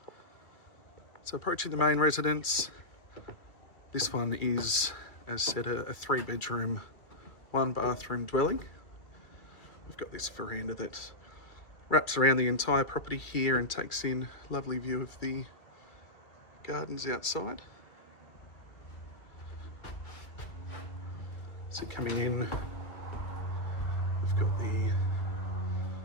So approaching the main residence, this one is, as said, a 3-bedroom, 1-bathroom dwelling. We've got this veranda that wraps around the entire property here and takes in a lovely view of the gardens outside. So coming in, we've got the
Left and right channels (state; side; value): late; right; 2.4 ms